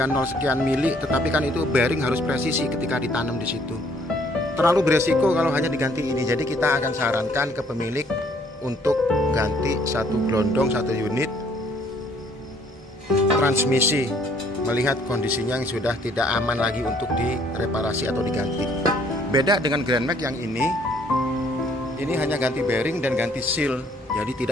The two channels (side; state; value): both; normal; correlation 0.63